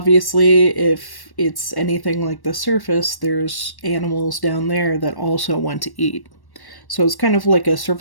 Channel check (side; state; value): right; late; 1.1 ms